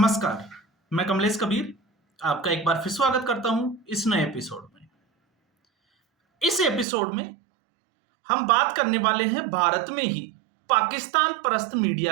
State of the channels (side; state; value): left; drops out; at 6.9 s